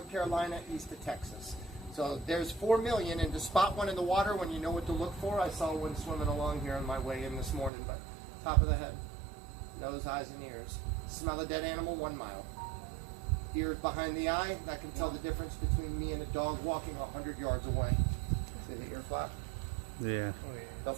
Carolina, east of Texas. So there's 4 million, and to spot one in the water when you know what to look for, I saw one swimming along here on my way in this morning, but top of the head, nose, eyes, and ears. Smell a dead animal, 1 mile. Ears behind the eye, that can tell the difference between me and a dog walking 100 yards away. See the ear flap? Yeah. They'll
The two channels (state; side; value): drops out; left; at 7.7 s